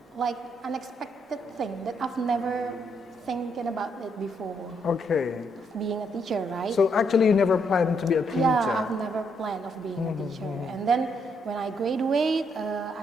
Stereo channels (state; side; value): normal; both; correlation 0.75